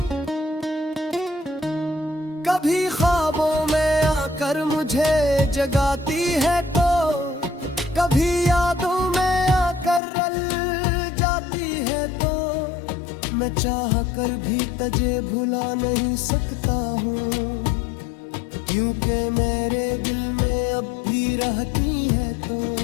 कभी ख्वाबों में आकर मुझे जगाती है तो, कभी यादों में आकर रल जाती है तो। मैं चाह कर भी तुझे भुला नहीं सकता हूँ, क्योंकि मेरे दिल में अब भी रहती है तो।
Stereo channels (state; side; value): drops out; right; at 10.0 s